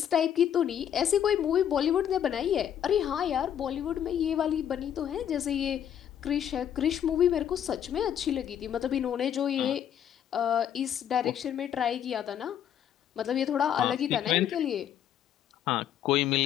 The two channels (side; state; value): right; quieter; 9.7 dB